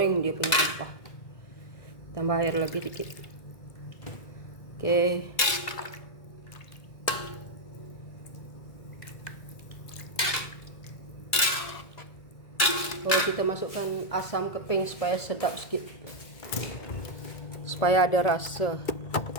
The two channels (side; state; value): right; late; 2.0 ms